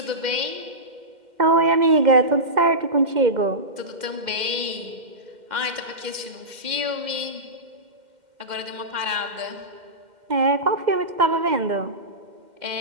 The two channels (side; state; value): left; late; 2.1 ms